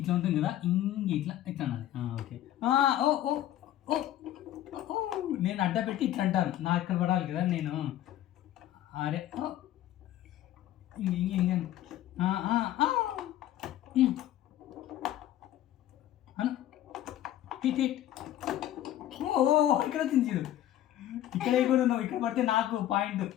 ఉంటుంది కదా. ఇంగే ఇట్లా అనాలి. ఓకే. నేను అడ్డ పెట్టి ఇట్లా అంటాను. నాకు ఇక్కడ పడాలి కదా నేను. అరే ఇంగే హిట్. ఇక్కడ వచ్చింది చూడు. ఇక్కడ కూడా నువ్వు ఇక్కడ పడితే నాకు పాయింట్.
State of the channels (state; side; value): quieter; right; 12.8 dB